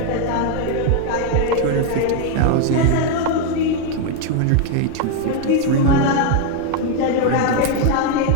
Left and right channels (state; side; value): different; both; correlation 0.01